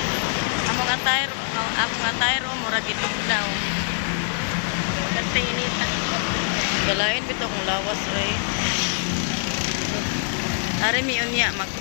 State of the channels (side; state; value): right; silent; digital silence